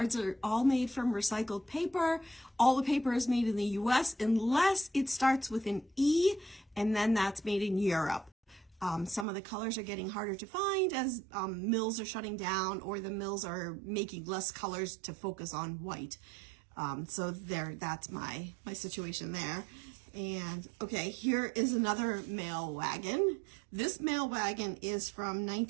are all made from recycled paper. All the paper is made in the US unless it starts with an E, and then that's made in Europe. Some of the colors are getting harder to find as mills are shutting down, or the mills are making less colors to focus on white. So that's my situation there. And okay, here is another mail wagon. This mail wagon is from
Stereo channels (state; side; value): drops out; left; at 9.2 s